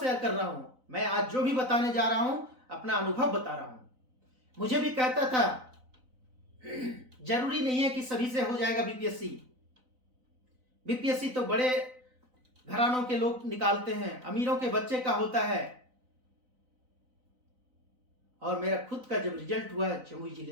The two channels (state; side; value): late; left; 4.0 ms